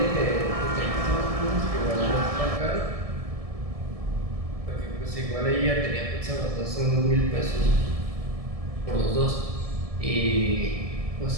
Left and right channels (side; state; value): left; late; 1.7 ms